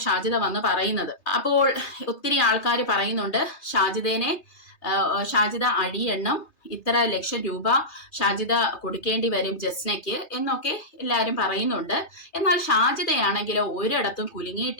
ഷാജിദ വന്ന് പറയുന്നത്. അപ്പോൾ ഒത്തിരി ആൾക്കാർ പറയുന്നുണ്ട് ഷാജിദ അഴിയെണ്ണം ഇത്ര ലക്ഷം രൂപ ഷാജിദ കൊടുക്കേണ്ടി വരും ജസ്നയ്ക്ക് എന്നൊക്കെ എല്ലാവരും പറയുന്നുണ്ട്. എന്നാൽ ഷാജിദയാണെങ്കിലോ ഒരിടത്തും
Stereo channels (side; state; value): right; late; 3.3 ms